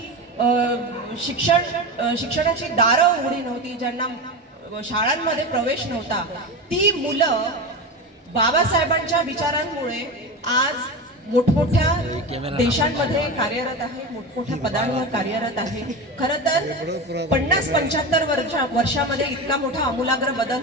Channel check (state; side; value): normal; both; correlation 0.22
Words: शिक्षणाची दारं उघडी नव्हती, ज्यांना शाळांमध्ये प्रवेश नव्हता, ती मुलं बाबासाहेबांच्या विचारांमुळे आज मोठमोठ्या देशांमध्ये कार्यरत आहे, मोठमोठ्या पदांवर कार्यरत आहे। खरं तर 50-75 वर्षामध्ये इतका मोठा आमूलाग्र